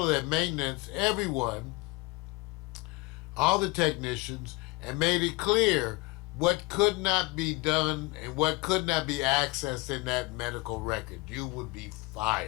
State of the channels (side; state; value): right; quieter; 24.3 dB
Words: of that maintenance, everyone, all the technicians, and made it clear what could not be done and what could not be accessed in that medical record. You would be